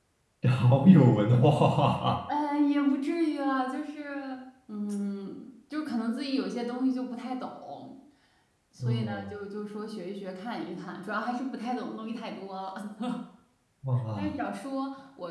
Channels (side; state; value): both; identical; correlation 1.00